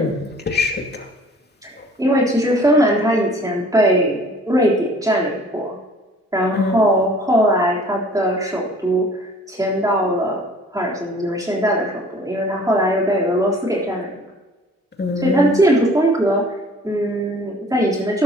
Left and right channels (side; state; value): both; normal; correlation 0.51